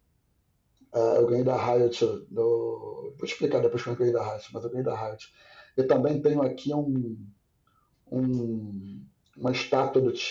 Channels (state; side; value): identical; both; correlation 1.00